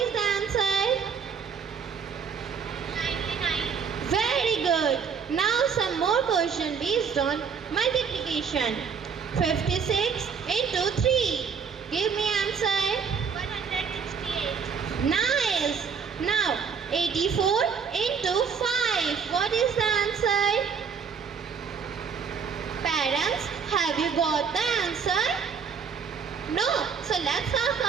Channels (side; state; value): left; quieter; 6.3 dB